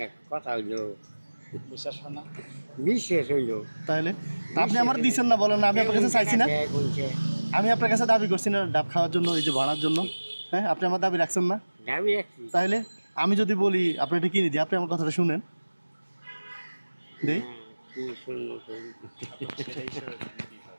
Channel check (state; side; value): inverted; both; correlation -1.00